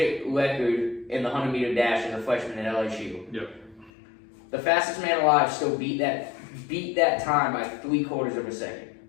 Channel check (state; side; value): drops out; right; at 3.9 s